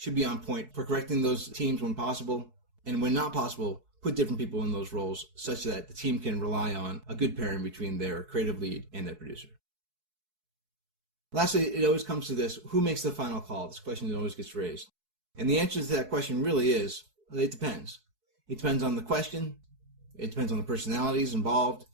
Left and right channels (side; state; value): left; late; 4.7 ms